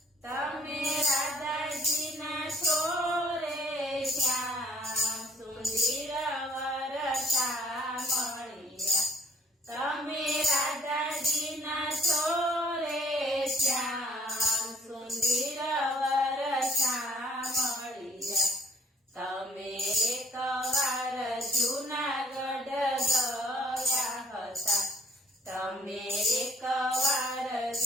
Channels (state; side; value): normal; both; correlation 0.63